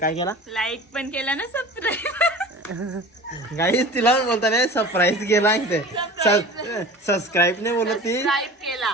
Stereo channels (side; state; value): both; normal; correlation 0.39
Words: केला लाईक पण केला ना सबस्क्राईब. गाईस तिला पण बोलता नाही सरप्राईज केला ते सबस्क्राईब नाही बोलत ती